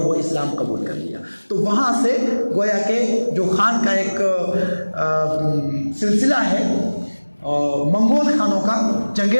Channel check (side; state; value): both; inverted; correlation -1.00